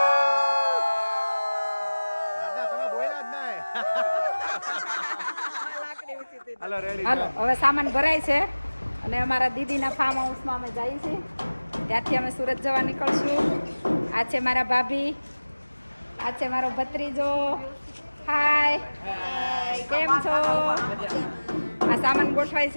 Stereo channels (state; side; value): inverted; both; correlation -1.00